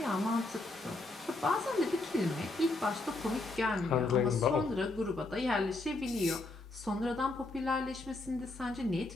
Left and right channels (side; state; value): right; quieter; 3.0 dB